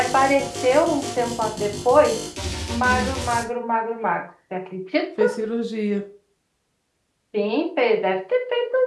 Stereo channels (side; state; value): both; identical; correlation 1.00